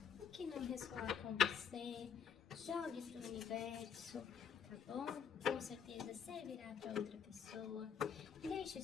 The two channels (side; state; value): right; quieter; 7.4 dB